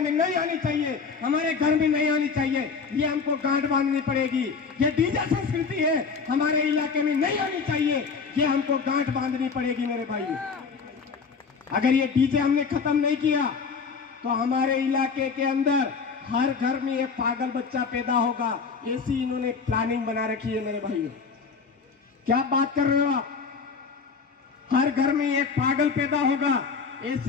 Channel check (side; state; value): right; quieter; 5.3 dB